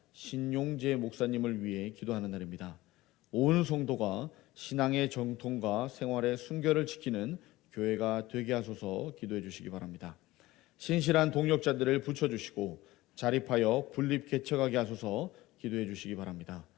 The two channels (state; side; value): quieter; right; 18.3 dB